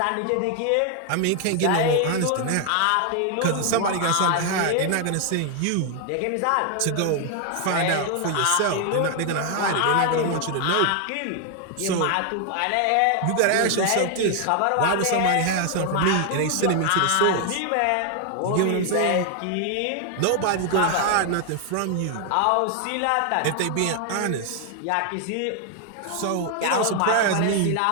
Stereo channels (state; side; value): different; both; correlation 0.00